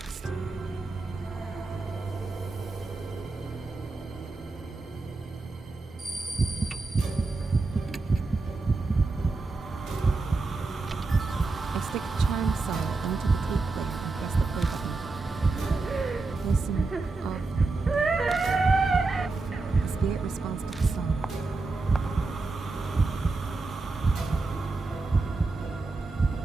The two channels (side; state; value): left; quieter; 3.6 dB